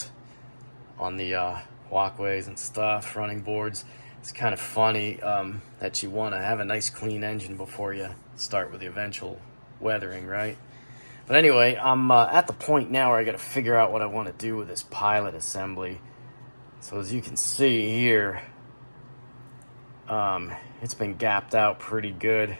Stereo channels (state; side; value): inverted; both; correlation -1.00